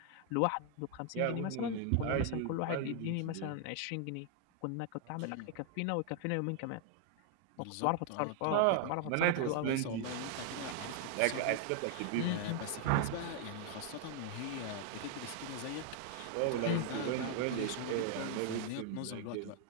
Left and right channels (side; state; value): both; different; correlation 0.00